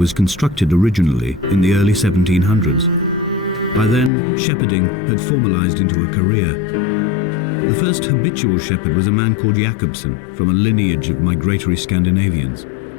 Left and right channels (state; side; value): drops out; right; at 4.1 s